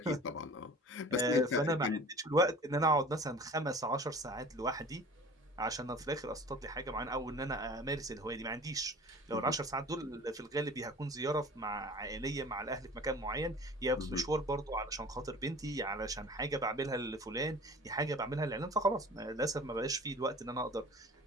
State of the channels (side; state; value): both; normal; correlation 0.43